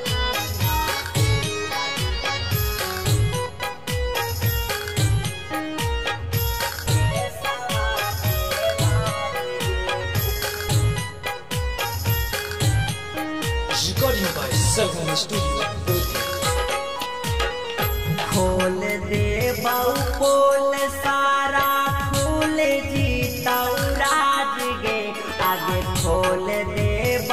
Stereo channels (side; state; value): both; identical; correlation 1.00